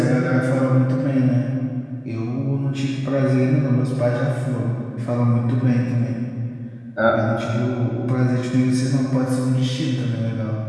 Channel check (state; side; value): identical; both; correlation 1.00